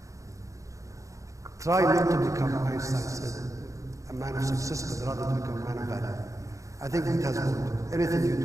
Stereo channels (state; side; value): late; left; 0.15 ms